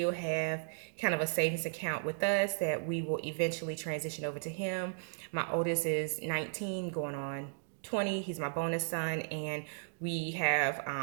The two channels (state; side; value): silent; left; digital silence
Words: have kind of a savings account with us that we will eventually transition over to him. My oldest is 19 going on 20. He's my bonus son, and we have